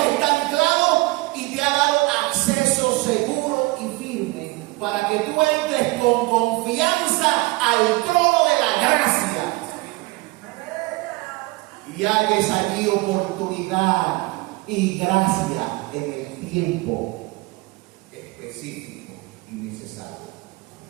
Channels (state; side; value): quieter; left; 23.1 dB